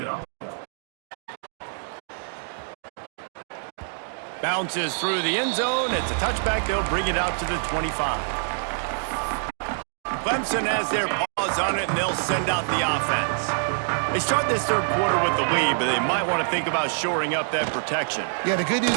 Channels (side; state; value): left; silent; digital silence